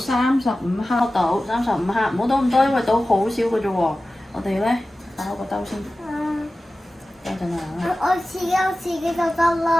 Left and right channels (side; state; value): both; normal; correlation 0.95